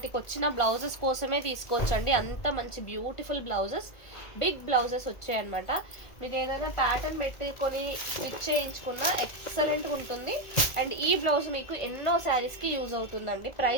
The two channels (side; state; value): right; late; 1.9 ms